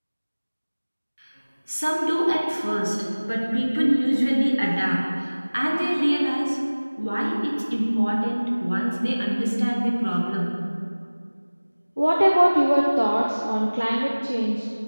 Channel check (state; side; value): inverted; both; correlation -1.00